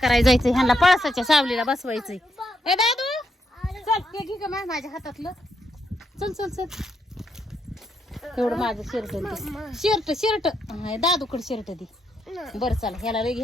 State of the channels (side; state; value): both; normal; correlation 0.79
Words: जायचंय. ह्यांना पळसाच्या सावलीला बसवायचंय. ए दादू चल, हे घे का माझ्या हातातलं. चल चल चल. एवढं माझं शर्ट शर्ट दादूकडे शर्ट दे. बरं चला, ह्याला लय